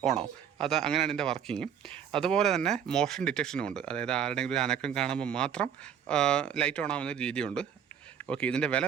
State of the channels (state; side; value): quieter; left; 8.5 dB